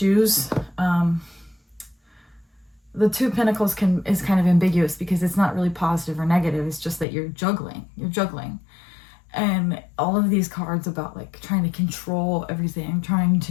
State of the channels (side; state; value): right; drops out; at 7.1 s